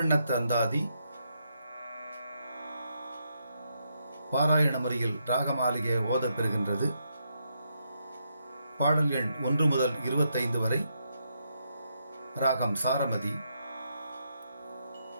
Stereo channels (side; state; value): both; inverted; correlation -0.79